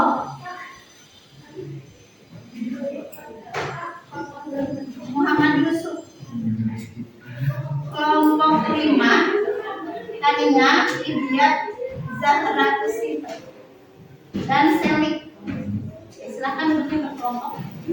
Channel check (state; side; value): identical; both; correlation 1.00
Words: Muhammad Yusuf. Kelompok 5 tadinya Ibyat Zahra Kusip dan Selik. Silakan duduk ke kelompok.